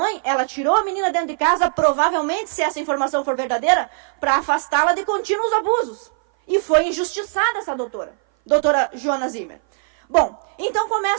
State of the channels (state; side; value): silent; left; 58 dB below the other